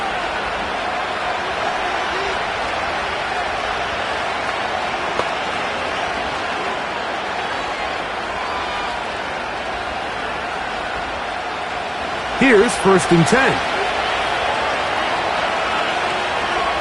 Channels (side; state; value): both; identical; correlation 1.00